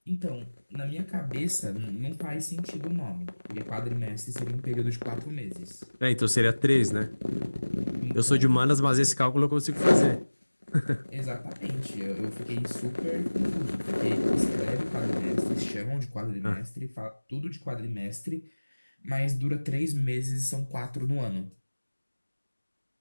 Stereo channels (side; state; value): both; inverted; correlation -1.00